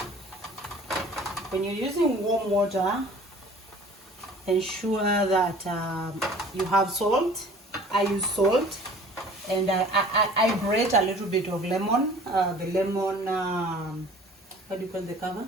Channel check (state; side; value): normal; both; correlation 0.48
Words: When you're using warm water, ensure that you have salt. I use salt, and I grate a little bit of lemon. The lemon, what do you call the cover?